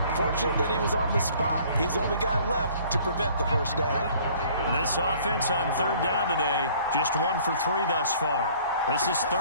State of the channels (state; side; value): inverted; both; correlation -0.54